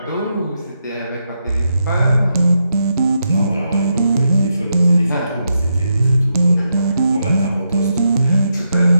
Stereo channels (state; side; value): inverted; both; correlation -0.83